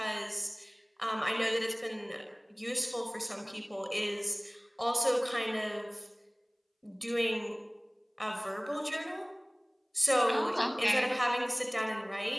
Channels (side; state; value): both; identical; correlation 1.00